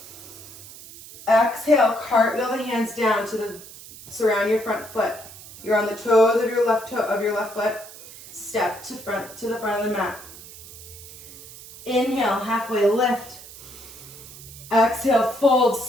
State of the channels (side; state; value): right; noise; hiss, 17 dB below the sound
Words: Exhale, cartwheel the hands down to surround your front foot. You're on the toes of your left foot. Step to the front of the mat. Inhale, halfway lift. Exhale, fold,